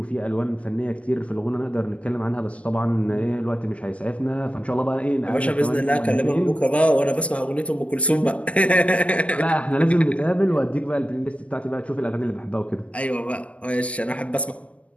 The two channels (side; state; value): right; late; 0.065 ms